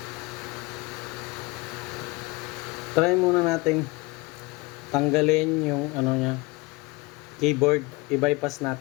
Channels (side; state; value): right; quieter; 23.9 dB